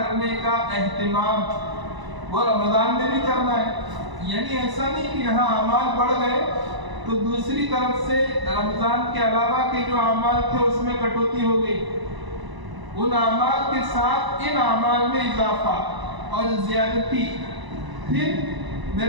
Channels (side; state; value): left; late; 1.0 ms